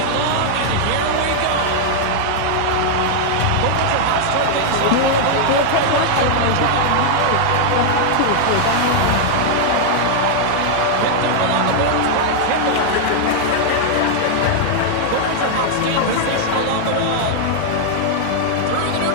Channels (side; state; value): both; different; correlation 0.00